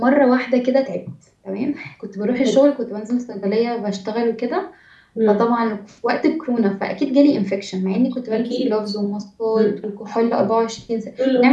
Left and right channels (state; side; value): identical; both; correlation 1.00